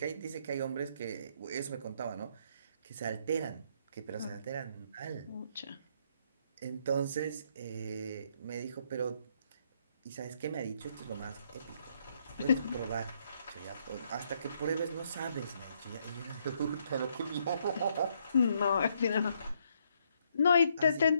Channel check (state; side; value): inverted; both; correlation -0.72